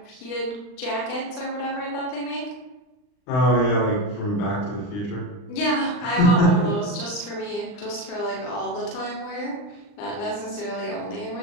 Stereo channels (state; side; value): late; right; 39 ms